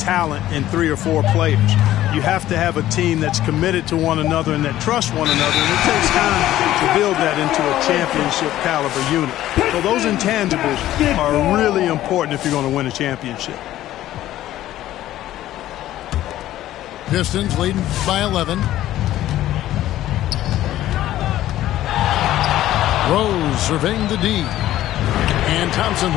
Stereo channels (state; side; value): quieter; right; 13.8 dB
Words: in 3 or 4 players. You have to have a team that's committed to one another and that trusts one another, and it takes time to build that into a championship caliber unit. So those intangibles are really important if you're going to win a championship. Pistons leading by 11. Rose surveying the D. And Thompson